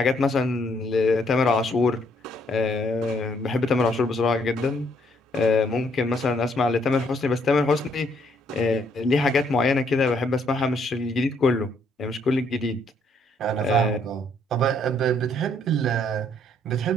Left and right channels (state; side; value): normal; both; correlation 0.68